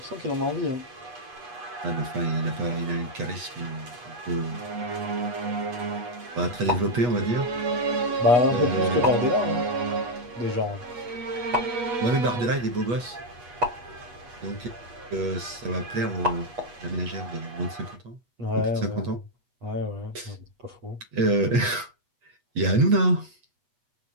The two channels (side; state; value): left; late; 8.3 ms